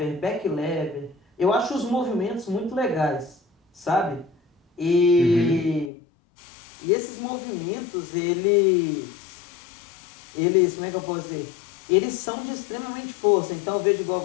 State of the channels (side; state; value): right; drops out; at 5.9 s